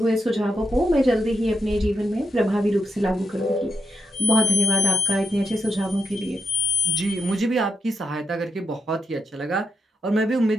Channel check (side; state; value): both; normal; correlation 0.86